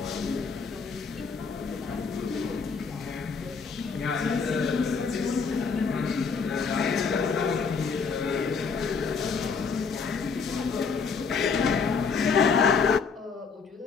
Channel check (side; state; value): right; quieter; 5.3 dB